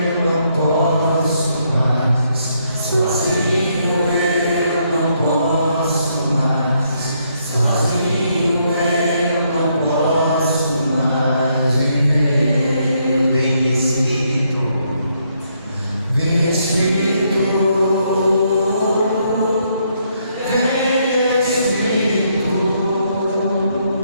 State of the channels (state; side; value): inverted; both; correlation -0.74